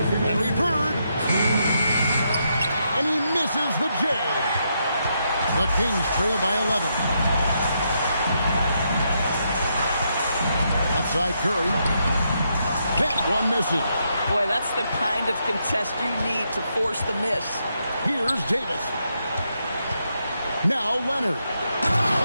Bird. And he misses the J. The Kings trail by 11. Outside Curry. That one misses. Boy, that's the kind of contest you need to force the miss. Here's Davis. Now Leonard.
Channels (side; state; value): both; inverted; correlation -0.79